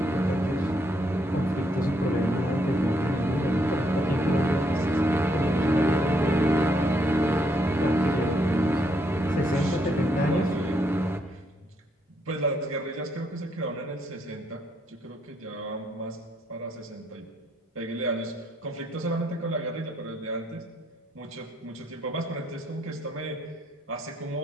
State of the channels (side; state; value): both; normal; correlation 0.74